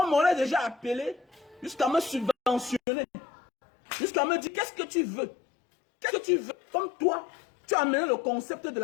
m'aurait déjà appelé jusqu'à me subventionner. Jusqu'à me dire, qu'est-ce que tu veux? Qu'est-ce que tu veux? Comme toi, tu as amené le concept de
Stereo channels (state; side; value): drops out; right; at 2.8 s